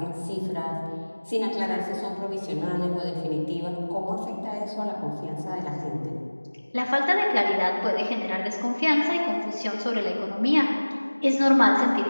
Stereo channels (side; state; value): both; inverted; correlation -1.00